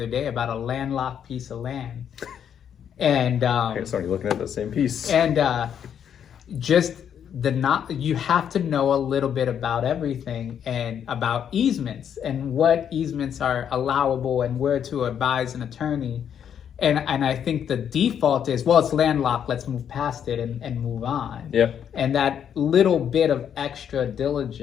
day about a landlocked piece of land. And somebody looking at the same piece. And you have to know a little bit about everything, and about easements and what easements are allowable and where to advise an attorney. And I think the default is, well, it's landlocked, let's move past it and move on. Yeah. And that little bit of extra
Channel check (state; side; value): quieter; right; 8.7 dB